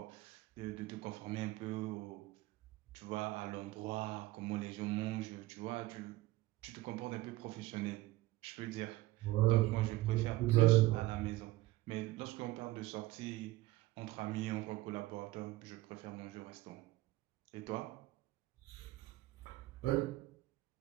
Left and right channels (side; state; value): left; quieter; 18.1 dB